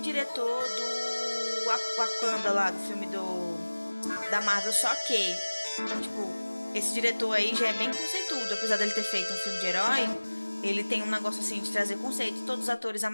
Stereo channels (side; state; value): both; inverted; correlation -1.00